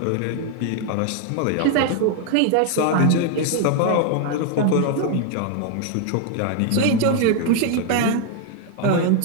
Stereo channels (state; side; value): different; both; correlation 0.00